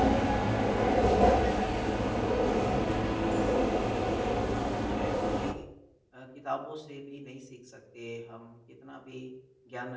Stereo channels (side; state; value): both; identical; correlation 1.00